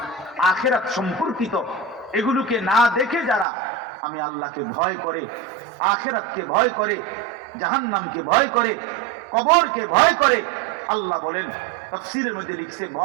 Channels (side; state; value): left; drops out; at 3.5 s